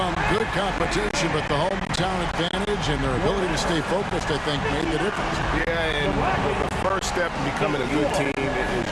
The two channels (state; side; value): identical; both; correlation 1.00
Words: good competition, but the hometown advantage and their ability to stay focused, I think, made the difference. Yeah, and the first step in becoming a good team is